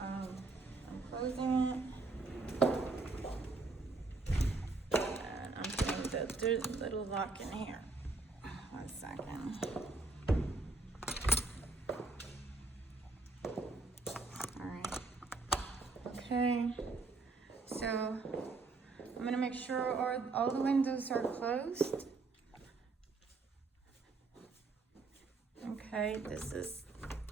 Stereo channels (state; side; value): quieter; left; 3.7 dB